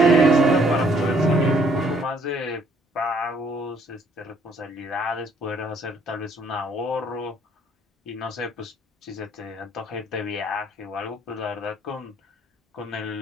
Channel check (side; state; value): both; normal; correlation 0.64